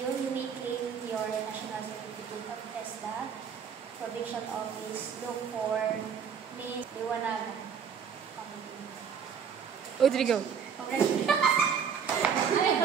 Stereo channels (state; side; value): quieter; left; 7.1 dB